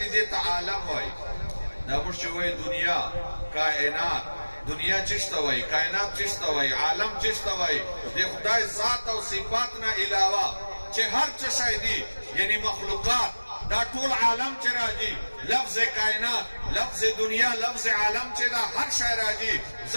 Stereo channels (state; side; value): inverted; both; correlation -1.00